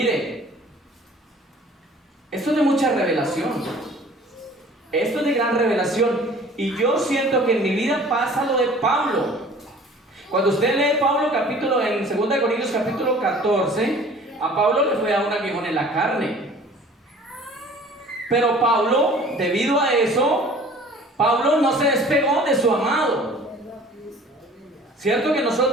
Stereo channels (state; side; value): normal; both; correlation 0.48